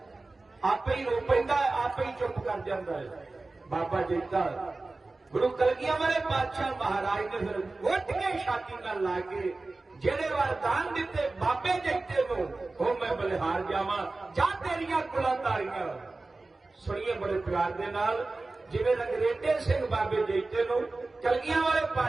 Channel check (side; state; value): left; quieter; 3.3 dB